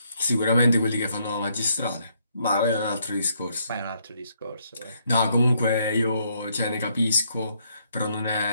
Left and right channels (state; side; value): inverted; both; correlation -0.72